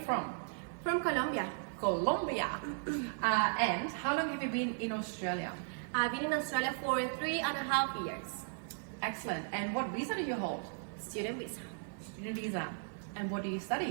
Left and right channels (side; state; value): left; silent; digital silence